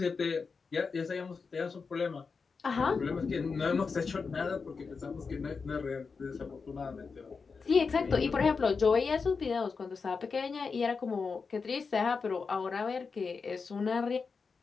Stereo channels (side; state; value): right; quieter; 5.0 dB